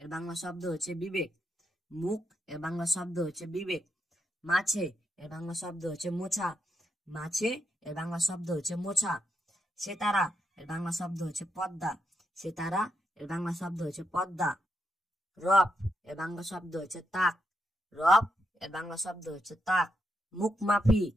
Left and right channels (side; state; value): both; normal; correlation 0.81